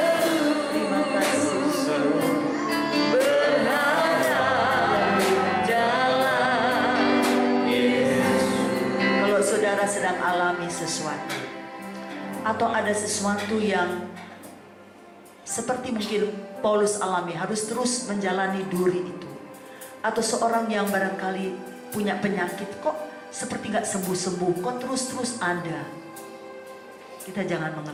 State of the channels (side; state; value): both; identical; correlation 1.00